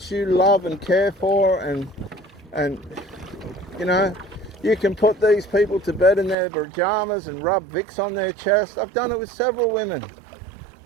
you love and care for, and you know, you can put these people to bed in their pajamas and rub Vicks on their chest. I've done it with several women.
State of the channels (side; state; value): left; drops out; at 6.4 s